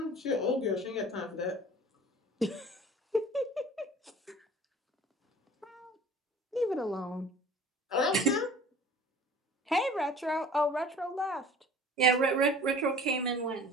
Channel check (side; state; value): both; normal; correlation 0.46